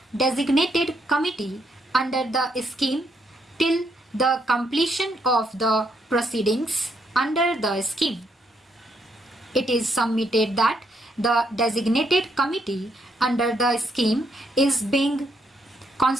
designated committee under the scheme till the completion of the proceedings under the scheme. It is submitted that the designated committee under the scheme is being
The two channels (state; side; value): normal; both; correlation 0.75